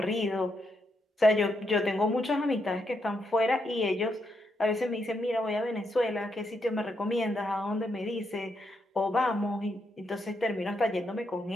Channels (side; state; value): both; normal; correlation 0.80